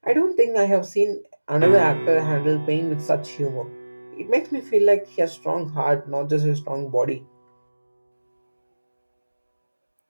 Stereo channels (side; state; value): both; inverted; correlation -1.00